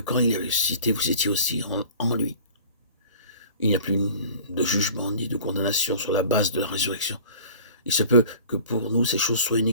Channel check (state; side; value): inverted; both; correlation -0.44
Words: il est ressuscité, vous étiez aussi en lui. Il n'y a plus de jugement ni de condamnation sur la base de la résurrection. Il se peut que pour nous, ces choses soient